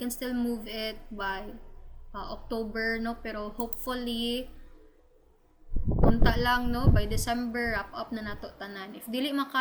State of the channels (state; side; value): identical; both; correlation 1.00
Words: still move it by October, no? Pero hopefully, unta lang, no? By December, wrap up na nato tanan. If dili